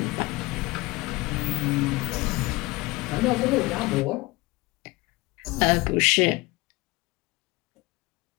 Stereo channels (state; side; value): quieter; right; 22.5 dB